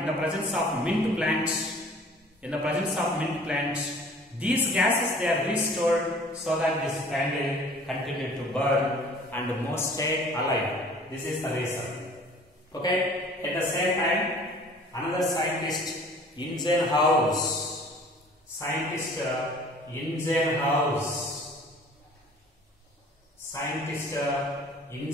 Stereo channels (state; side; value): normal; both; correlation 0.50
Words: the presence of mint plants, these gases, they are restored so that this candle continued to burn and moss stayed alive. This is the reason. Okay. At the same time, another scientist, Ingenhousz. Scientist